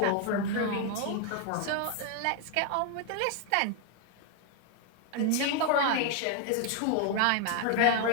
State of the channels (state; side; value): different; both; correlation 0.00